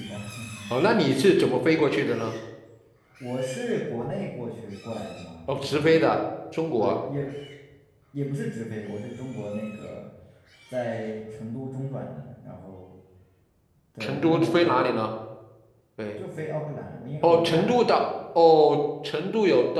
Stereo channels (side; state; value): both; identical; correlation 1.00